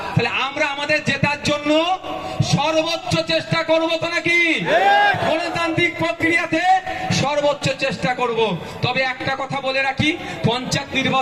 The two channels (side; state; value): both; identical; correlation 1.00